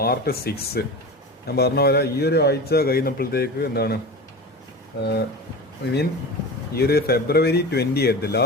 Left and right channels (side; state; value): both; normal; correlation 0.30